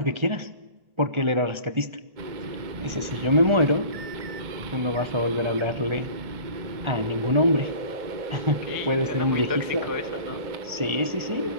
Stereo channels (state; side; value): late; left; 1.4 ms